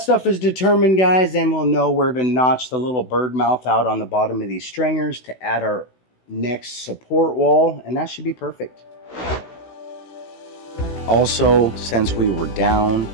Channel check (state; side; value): late; right; 16 ms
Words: is determined, guys, then we'll know where to notch the little bird mouth out on the bottom of these stringers to add our next support wall, and that should be perfect. Also, since we were down,